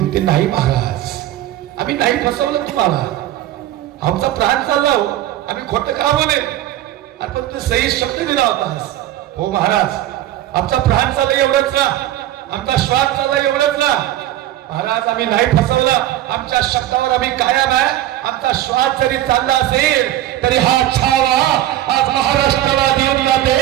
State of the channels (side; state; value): left; quieter; 13.7 dB